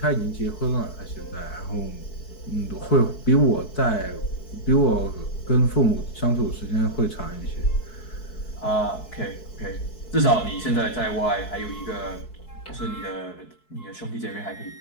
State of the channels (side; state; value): right; late; 4.6 ms